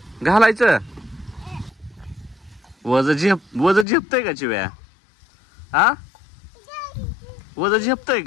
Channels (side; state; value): right; drops out; at 3.9 s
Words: घालायचं वज झेपतय का चिव्या. हा वज झेपतय